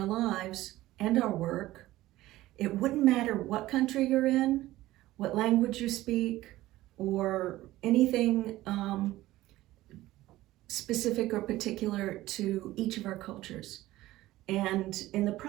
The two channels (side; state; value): left; quieter; 16.4 dB